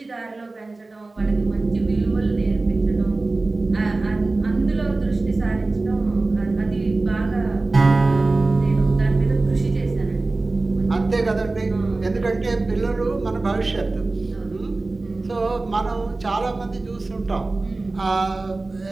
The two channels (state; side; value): quieter; left; 3.3 dB